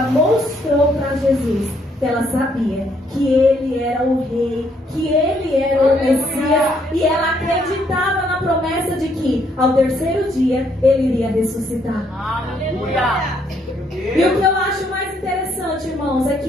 mostrou para Jesus que ela sabia que ele era o rei, que ele era o Messias, e ela acreditava na promessa de que ao terceiro dia ele iria ressuscitar. Aleluia! E o que eu acho mais interessante, irmãos, é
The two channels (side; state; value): both; normal; correlation 0.70